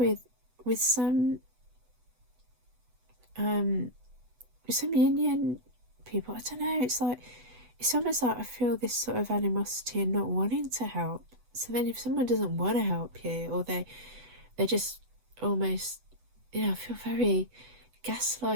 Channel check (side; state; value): left; late; 8.1 ms